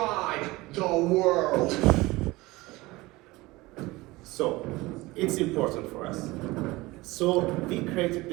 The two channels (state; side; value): quieter; left; 20.7 dB